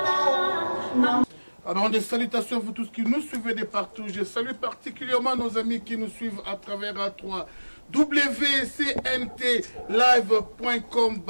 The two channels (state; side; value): inverted; both; correlation -1.00